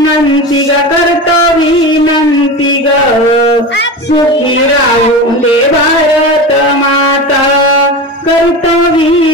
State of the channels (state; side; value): normal; both; correlation 0.26